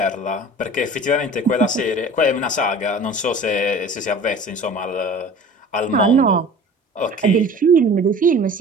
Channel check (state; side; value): normal; both; correlation 0.42